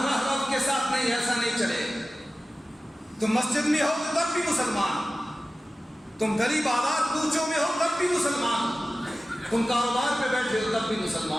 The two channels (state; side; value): normal; both; correlation 0.95